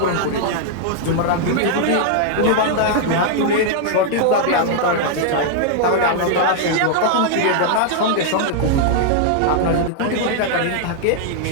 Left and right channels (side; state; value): both; different; correlation -0.01